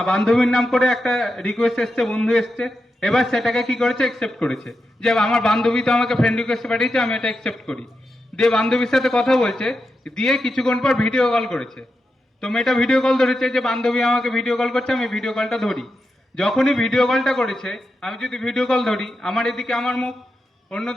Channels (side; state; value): both; normal; correlation 0.88